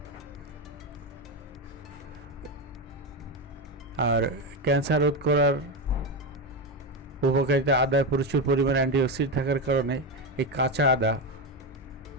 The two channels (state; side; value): normal; both; correlation 0.13